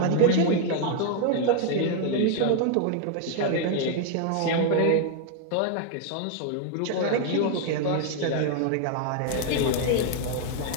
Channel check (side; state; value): both; different; correlation 0.00